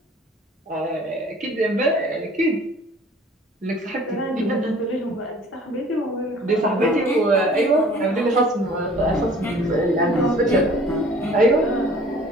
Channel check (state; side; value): normal; both; correlation 0.51